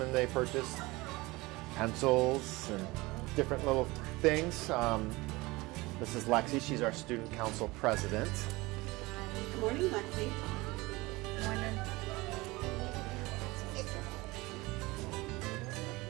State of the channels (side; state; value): left; quieter; 22.0 dB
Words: and they purchase pencils and different little things. This is Lexi. She's our student council president. Good morning, Lexi. Good morning.